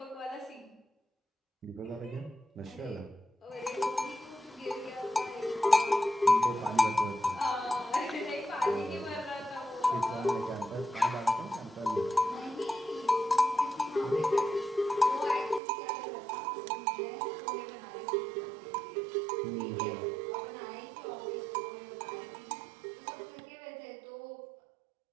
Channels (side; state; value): left; drops out; at 15.6 s